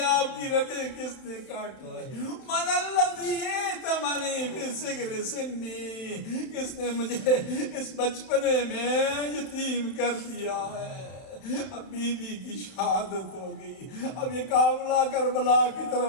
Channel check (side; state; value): right; late; 31 ms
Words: آپ کی رگیں کس نے کاٹی ہے؟ من الذی ائتمنی فی صغر سنی، کس نے مجھے اس بچپنے میں یتیم کر دیا ہے؟ اب بیوی کی شہادت ہو گئی، اب یہ قافلہ کربلا کی